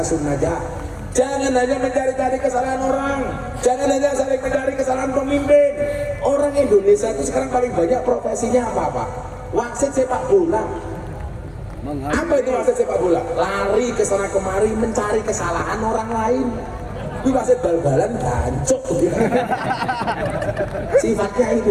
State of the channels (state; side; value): identical; both; correlation 1.00